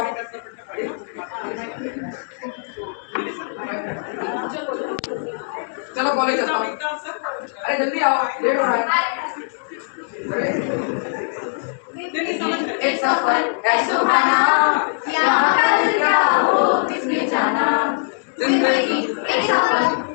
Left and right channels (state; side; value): silent; right; digital silence